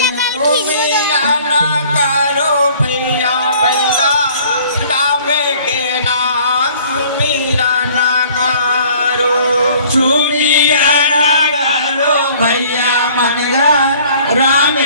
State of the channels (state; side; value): inverted; both; correlation -0.53